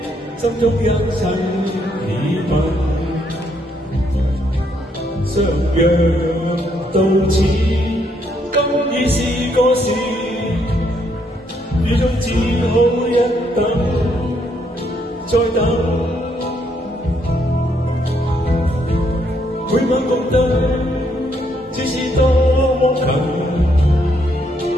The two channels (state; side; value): normal; both; correlation 0.73